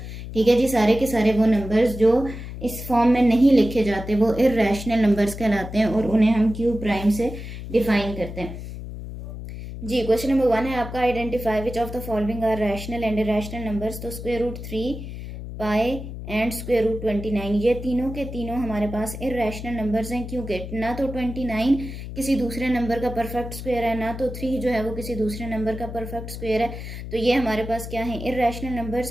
ठीक है जी, सारे के सारे वो नंबर्स जो इस फॉर्म में नहीं लिखे जाते वो इरैशनल नंबर्स कहलाते हैं और उन्हें हम q प्राइम से डिफाइन करते हैं. जी, क्वेश्चन नंबर 1 है आपका, identify which of the following are rational and irrational numbers. तो square root 3 pi and square root 29 ये तीनों के तीनों हमारे पास इरैशनल नंबर्स हैं, क्योंकि ना तो 29 किसी दूसरे नंबर का परफेक्ट स्क्वायर है, ना तो 3 जो है वो किसी दूसरे नंबर का परफेक्ट स्क्वायर है. तो ये हमारे पास क्या है, इरैशनल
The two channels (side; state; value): left; noise; hum, 9 dB below the sound